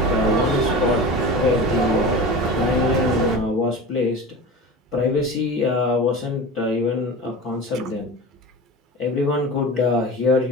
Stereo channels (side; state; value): both; normal; correlation 0.32